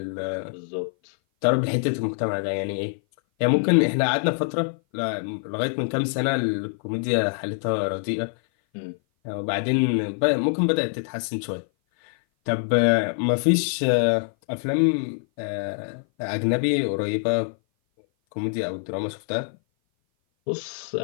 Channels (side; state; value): right; silent; 57 dB below the other